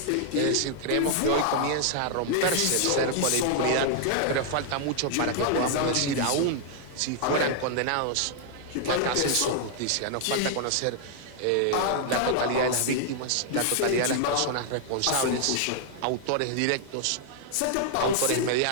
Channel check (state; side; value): different; both; correlation 0.00